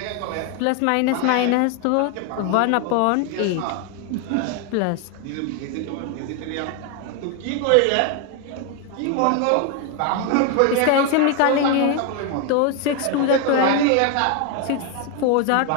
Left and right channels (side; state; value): both; different; correlation 0.01